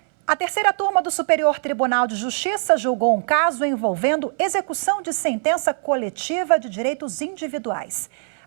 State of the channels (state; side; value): silent; left; 64 dB below the other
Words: A terceira turma do Superior Tribunal de Justiça julgou um caso envolvendo execução de sentença coletiva de direitos individuais.